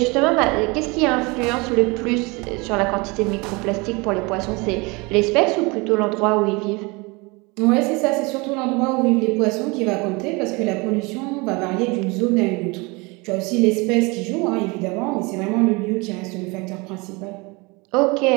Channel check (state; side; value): quieter; left; 26.6 dB